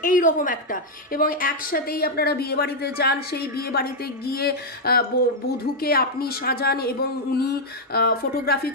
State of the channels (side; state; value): both; normal; correlation -0.02